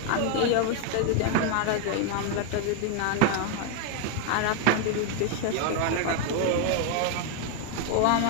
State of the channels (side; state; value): both; different; correlation 0.01